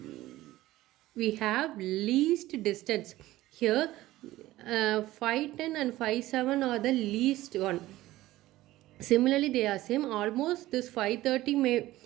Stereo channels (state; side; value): quieter; left; 16.5 dB